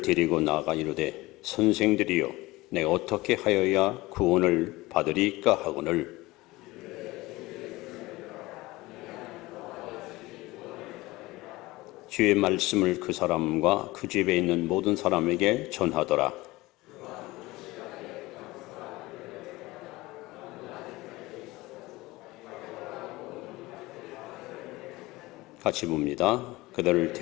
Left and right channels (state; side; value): quieter; right; 20.2 dB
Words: 데리고 나아가 이르되 선생들이여 내가 어떻게 하여야 구원을 받으리까 하거늘 주의 말씀을 그 사람과 그 집에 있는 모든 사람에게 전하더라. 같이 봅니다. 그들을